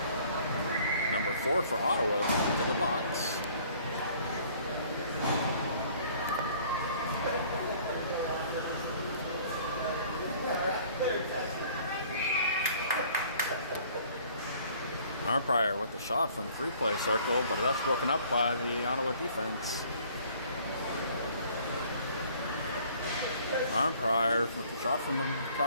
Number 4 for Ottawa into the box. Arnprior with the shot from the free-play circle, but that's broken up by the Ottawa defense. Arnprior with the shot from the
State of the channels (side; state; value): both; inverted; correlation -0.55